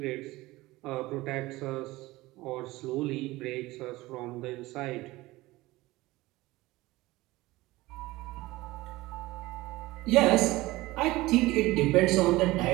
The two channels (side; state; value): left; quieter; 19.4 dB